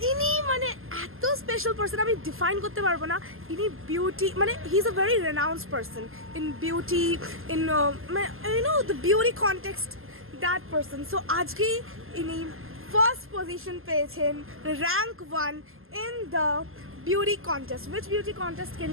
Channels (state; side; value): late; left; 0.61 ms